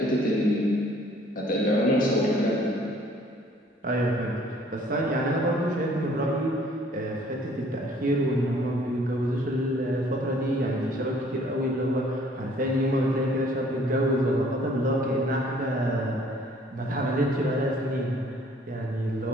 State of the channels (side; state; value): both; normal; correlation 0.58